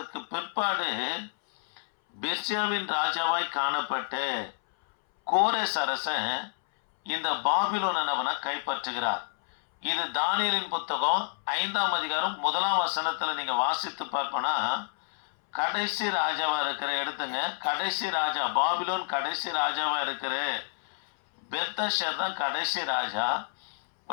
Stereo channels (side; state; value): right; silent; 59 dB below the other